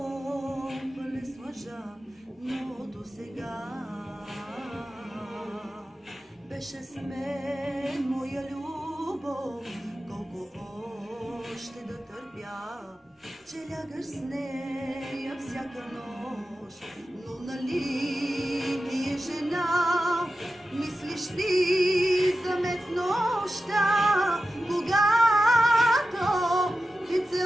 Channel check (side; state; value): both; normal; correlation 0.93